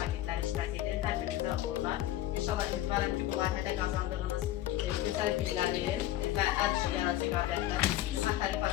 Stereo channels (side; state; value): right; quieter; 14.1 dB